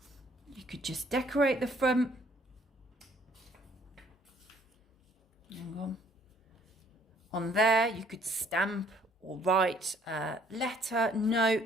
You could just decorate the front. Hang on. On there, you could stamp or write a letter, note,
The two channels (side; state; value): both; normal; correlation 0.62